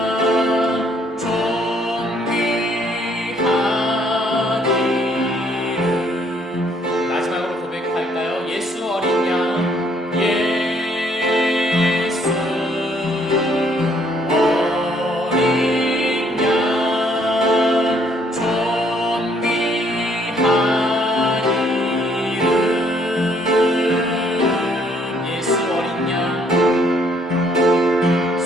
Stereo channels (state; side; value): normal; both; correlation 0.66